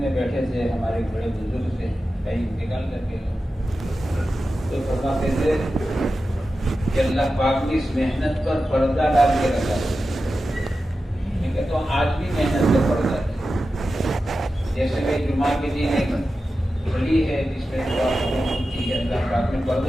میں بیٹھے تھے, ہمارے بڑے بزرگ سے کہیں انتقال کر کے تو فرماتے تھے کہ اللہ پاک نے اس محنت پر پردہ ڈال کے رکھا ہے. میں کہتا ہوں آج بھی محنت پر پردہ ہے. جیسے کہ جمعہ کے دن ایک گھڑی ہے جس میں دعا ہوتی ہے, اللہ پاک نے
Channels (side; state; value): both; normal; correlation 0.92